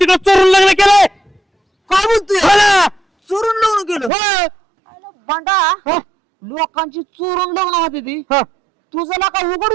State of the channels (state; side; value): drops out; left; at 4.1 s